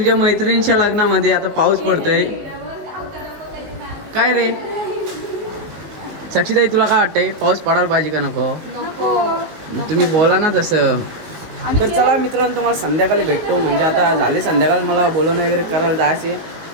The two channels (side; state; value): left; late; 19 ms